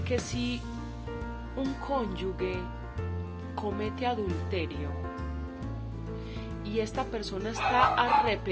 que si un cónyuge comete adulterio y esta persona está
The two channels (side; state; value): both; identical; correlation 1.00